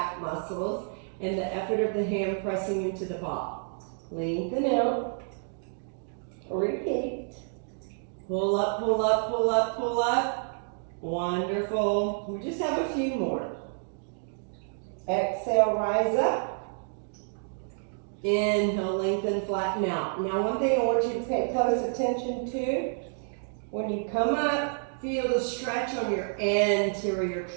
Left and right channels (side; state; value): left; silent; digital silence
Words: muscles and the effort of the hand pressing into the ball. Lengthen out. Repeat. Pull up, pull up, pull up, pull up. Wonderful. We just have a few more. Exhale, rise up. Inhale, lengthen, flatten out. Now one thing I want you to pay close attention to, when you come up, feel the stretch on your anterior